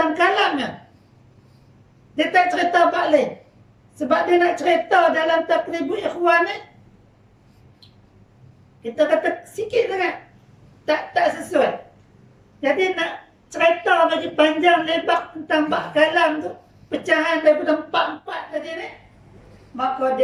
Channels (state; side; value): identical; both; correlation 1.00